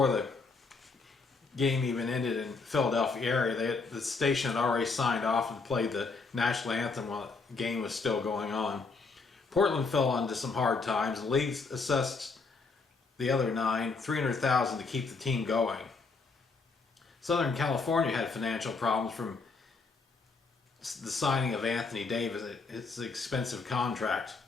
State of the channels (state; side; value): quieter; right; 4.3 dB